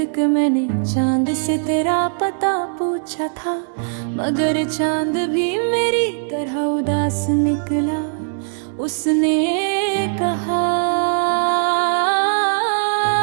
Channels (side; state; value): left; silent; digital silence